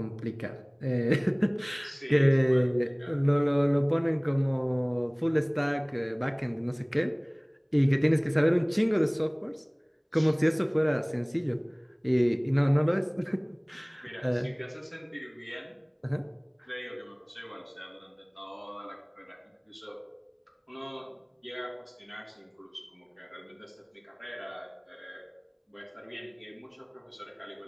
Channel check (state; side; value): identical; both; correlation 1.00